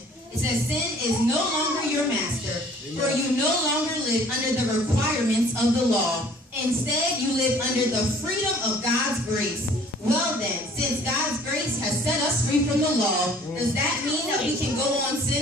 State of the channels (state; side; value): normal; both; correlation 0.54